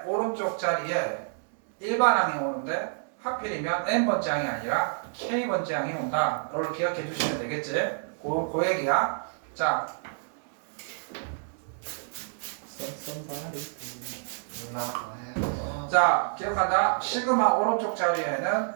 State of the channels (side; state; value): left; silent; digital silence